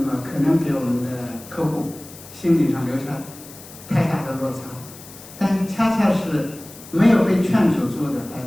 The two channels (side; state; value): left; noise; hiss, 18 dB below the sound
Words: 可能给我们的客户心理上留下太大的落差。但恰恰是没有被劝阻住的